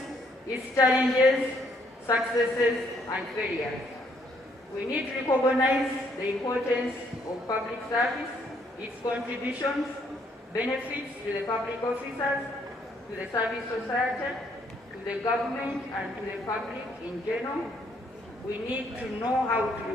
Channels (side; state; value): both; normal; correlation 0.69